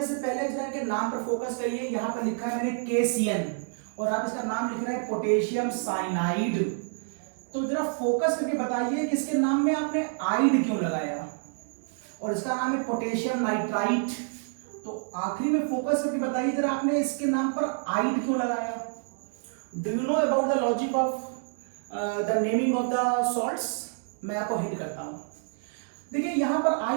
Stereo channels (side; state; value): left; silent; 59 dB below the other